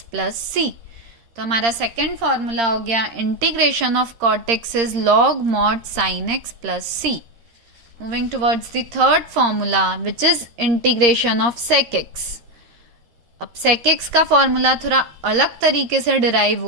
plus c। तो हमारा second formula हो गया integration of cot x is log mod sin x plus c। Moving towards the third formula which is integration of sec x। अब sec x का formula थोड़ा अलग तरीके से डिराइव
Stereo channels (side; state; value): left; late; 13 ms